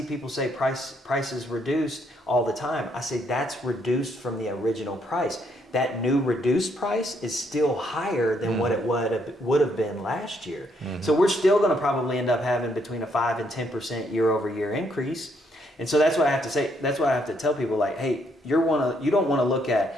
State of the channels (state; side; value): normal; both; correlation 0.72